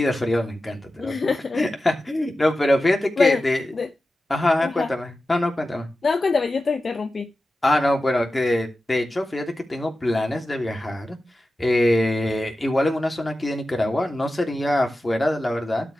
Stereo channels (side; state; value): both; normal; correlation 0.93